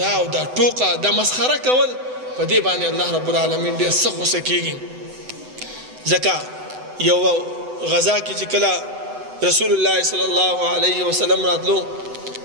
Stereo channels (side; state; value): left; late; 7.9 ms